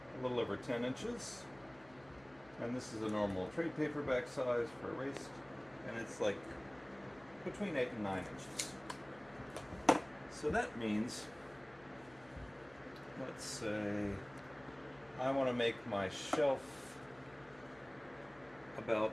a little over 10 inches. And this is a normal trade paperback size for a waist. And it's like between 8 and 9 inches. So that means, let's say I want to make my shelf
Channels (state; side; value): noise; left; hum, 24 dB below the sound